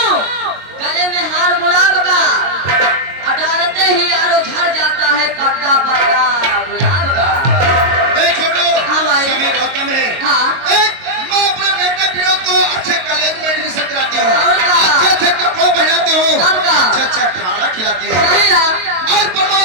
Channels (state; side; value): late; left; 22 ms